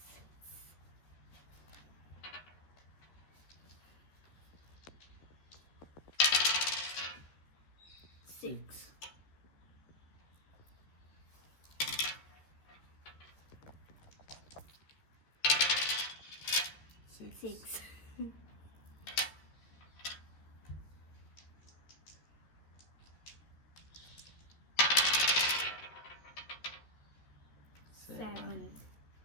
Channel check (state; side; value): late; right; 13 ms